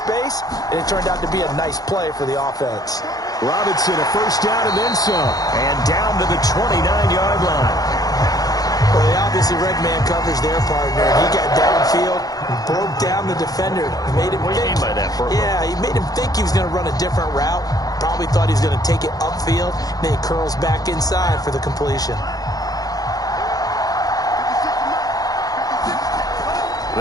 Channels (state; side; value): late; right; 0.18 ms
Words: and it turned out to be a nice play for the offense. Robinson, a first down and then some. And down to the 29-yard line. Well, he obviously read man coverage there, partner. He got downfield and broke down the defender. Made him what do you mean by that, Burko? Yeah, he made him think he was going to run a different route. Probably thought he was going to take it upfield. Then he curls back inside for the completion.